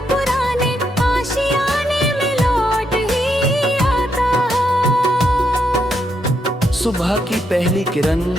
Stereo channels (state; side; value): normal; both; correlation 0.79